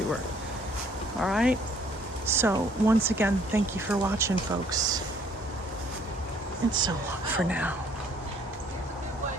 All right? So, once again, thank you for watching, folks. And so long for now.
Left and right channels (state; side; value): normal; both; correlation 0.61